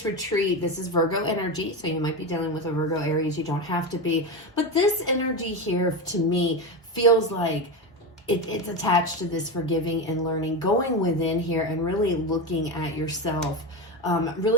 retreat, this is Virgo energy, so you might be dealing with a Virgo Aries. You don't have to be. But this energy here, to me, feels like it's attached to this forgiving and learning, going within here and really looking at yourself.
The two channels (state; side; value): normal; both; correlation 0.17